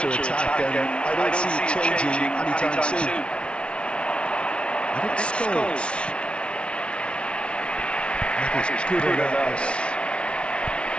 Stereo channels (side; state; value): right; late; 0.059 ms